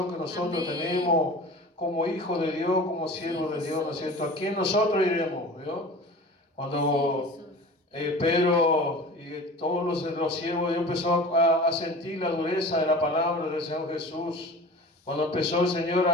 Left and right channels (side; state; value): both; normal; correlation 0.38